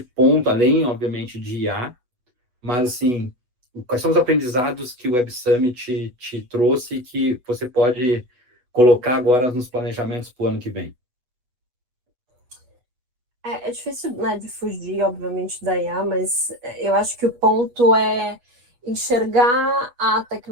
ponto, além, obviamente, de IA, mas, assim, quais são os aprendizados que o Web Summit te trouxe e que você pode colocar agora nos planejamentos para o ano que vem? É difícil, né, de fugir, obviamente, da IA, mas eu acho que o ponto é enxergar a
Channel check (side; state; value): left; late; 8.2 ms